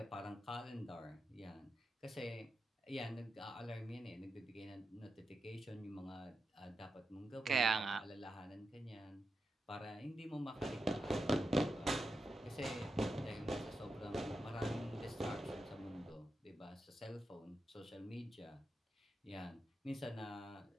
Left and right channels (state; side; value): normal; both; correlation 0.87